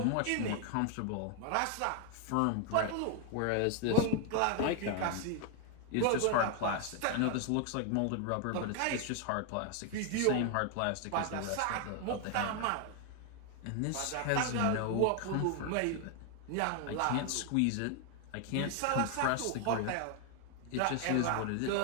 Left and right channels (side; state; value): both; different; correlation 0.01